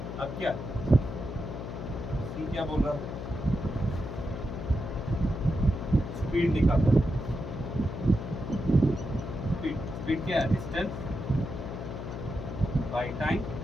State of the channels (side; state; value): left; noise; hum, 7 dB below the sound